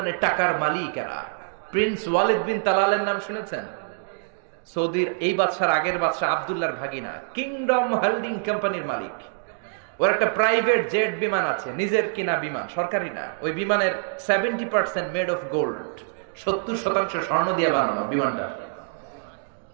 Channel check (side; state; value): left; silent; digital silence